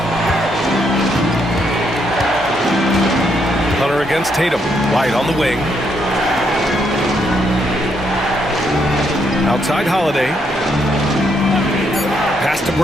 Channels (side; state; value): both; normal; correlation 0.75